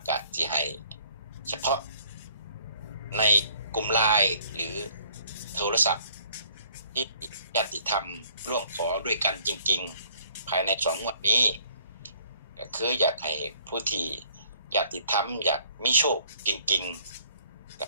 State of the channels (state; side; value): inverted; both; correlation -0.60